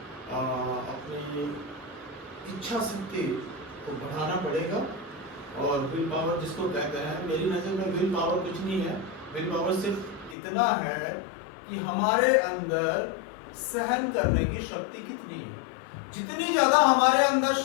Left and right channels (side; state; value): right; drops out; at 10.4 s